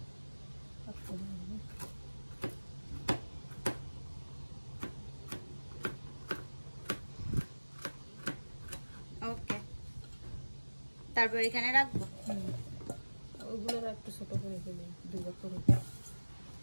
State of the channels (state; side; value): inverted; both; correlation -1.00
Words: ওকে, তারপর এখানে রাখবো। ওইগুলো একটু ছোট করে ফেলি, 2 ভাগ করে।